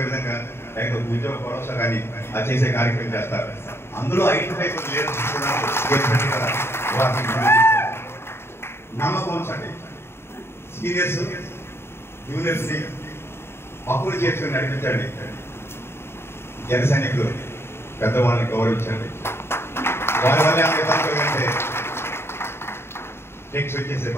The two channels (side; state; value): right; late; 0.12 ms